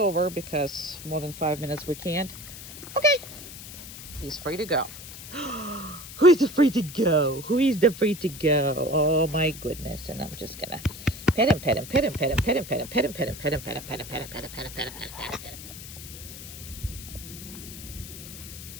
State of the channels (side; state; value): left; noise; hiss, 13 dB below the sound